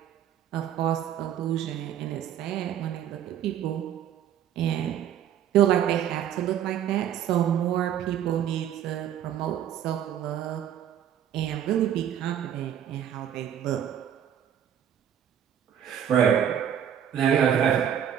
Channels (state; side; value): quieter; left; 9.7 dB